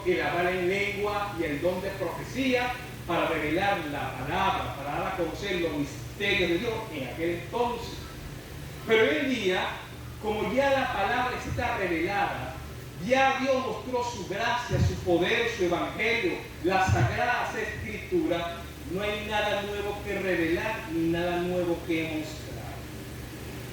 el hablar en lengua y el don de profecía para revelar la palabra, para dar a conocer los misterios de Dios en aquel entonces. Pero hoy en día como ya la palabra está revelada, ya Dios mostró su gracia, su poder, su evangelio, las sagradas escrituras, no hay nada nuevo que revelar ni nada nuevo que mostrar.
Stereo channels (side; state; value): both; identical; correlation 1.00